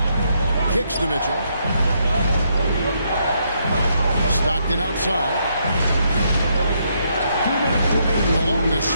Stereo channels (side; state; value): both; inverted; correlation -0.76